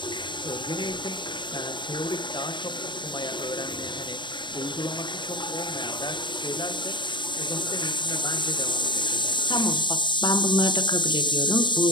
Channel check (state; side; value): late; right; 0.23 ms